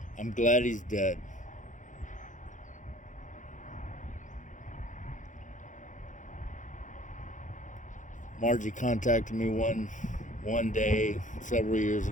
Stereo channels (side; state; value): right; late; 0.37 ms